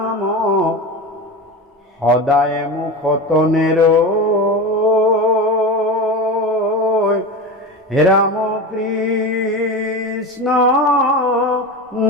সদায় মুখত নেৰৈ ৰাম কৃষ্ণ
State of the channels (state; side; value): normal; both; correlation 0.25